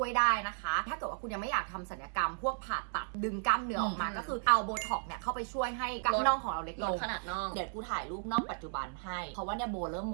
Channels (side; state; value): left; silent; 55 dB below the other